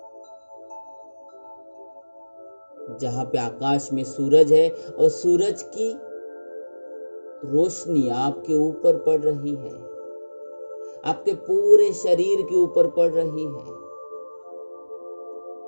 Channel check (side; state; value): both; inverted; correlation -1.00